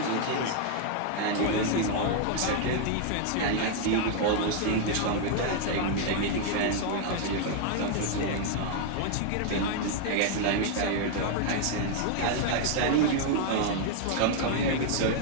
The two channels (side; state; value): both; different; correlation 0.00